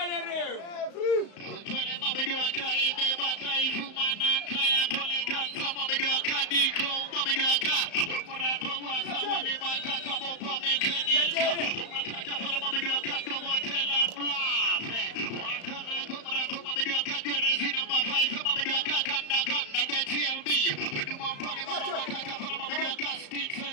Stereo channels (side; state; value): right; late; 35 ms